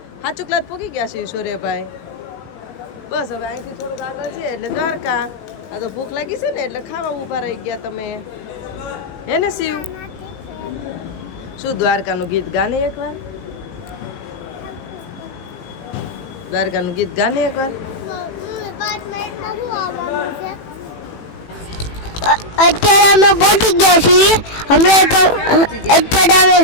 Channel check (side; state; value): right; late; 18 ms